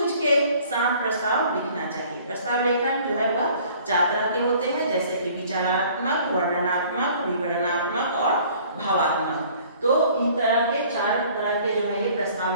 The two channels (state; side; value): inverted; both; correlation -0.53